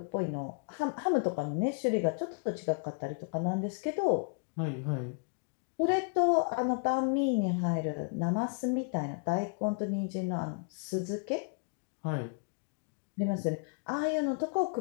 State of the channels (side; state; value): right; quieter; 39.9 dB